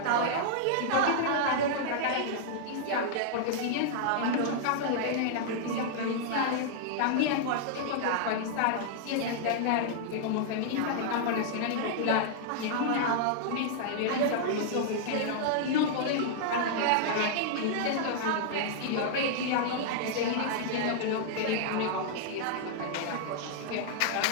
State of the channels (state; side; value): different; both; correlation -0.01